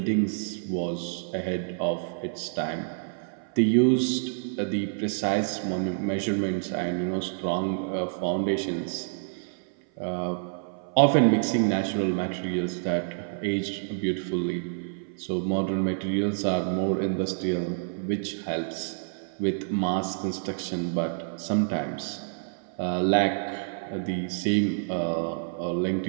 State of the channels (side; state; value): left; silent; 57 dB below the other